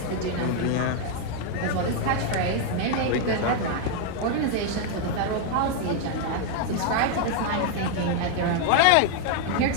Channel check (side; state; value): both; different; correlation 0.00